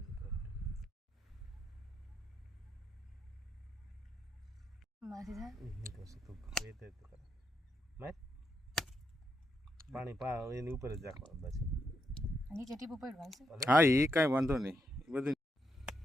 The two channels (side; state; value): both; normal; correlation 0.81